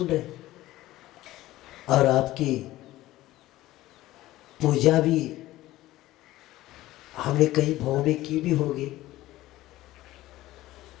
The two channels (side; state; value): right; quieter; 16.3 dB